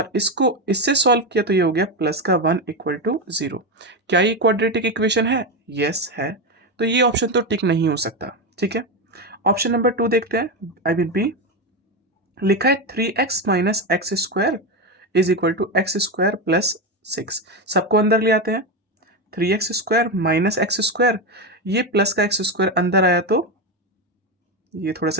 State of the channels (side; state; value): both; normal; correlation 0.13